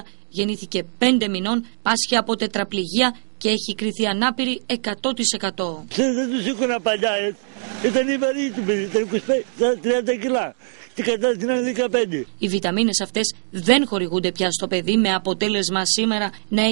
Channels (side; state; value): left; silent; digital silence